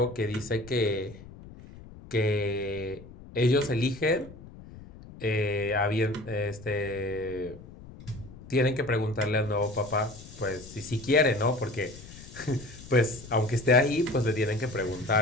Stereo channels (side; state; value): left; noise; rumble, 17 dB below the sound